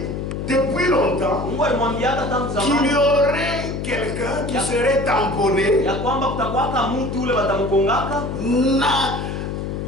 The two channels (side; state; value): left; noise; hum, 4 dB below the sound